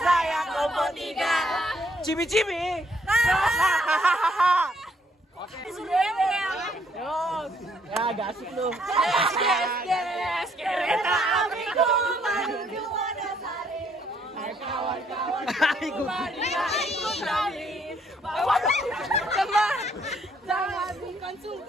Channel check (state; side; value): normal; both; correlation 0.69